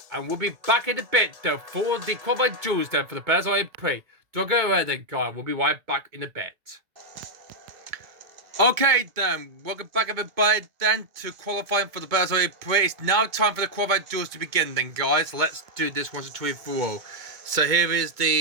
And we'll be back in a bit, though, for the qualified duels, then, for the Berzo E-Prix. Don't go away then, guys. We'll be right back in a bit. Okay, then. Welcome back, everybody, then, to qualifying for the Berzo E-Prix. It's now time for the qualified duels to begin, then, guys. Let's do this once and twice for all. So here is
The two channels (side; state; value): left; late; 2.2 ms